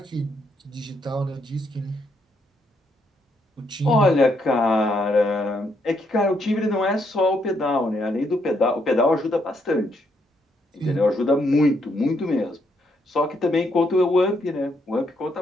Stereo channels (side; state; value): both; normal; correlation 0.75